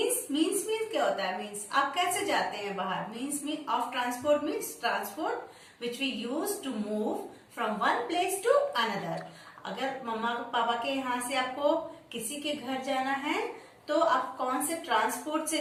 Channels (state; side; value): identical; both; correlation 1.00